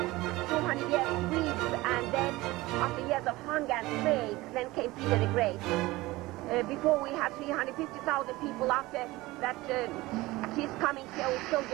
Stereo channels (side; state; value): left; quieter; 19.8 dB